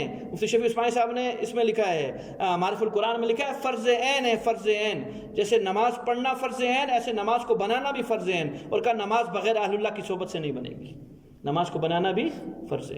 مفتی شفیع عثمانی صاحب نے اس میں لکھا ہے، معرف القرآن میں لکھا ہے فرض عین ہے. فرض عین جیسے نماز پڑھنا فرض عین، ایسے نماز کو بنانا بھی فرض عین. اور کہا نماز بغیر اہل اللہ کی صحبت سے نہیں بنے گی. نماز کو بنانا بھی فرض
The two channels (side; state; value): both; identical; correlation 1.00